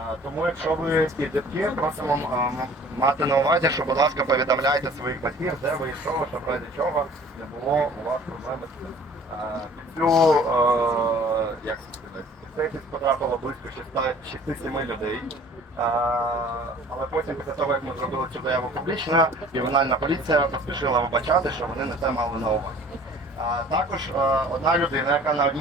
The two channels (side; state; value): both; normal; correlation 0.50